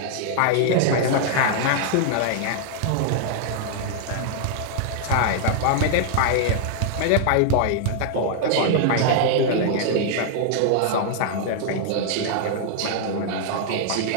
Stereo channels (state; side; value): different; both; correlation 0.00